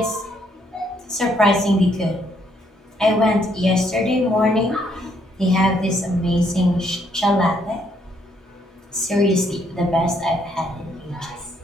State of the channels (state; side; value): normal; both; correlation 0.71